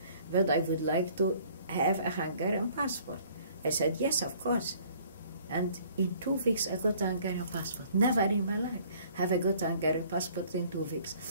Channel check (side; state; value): both; inverted; correlation -0.56